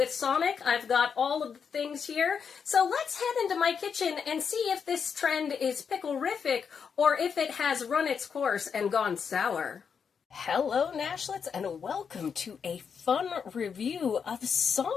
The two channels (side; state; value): right; quieter; 6.6 dB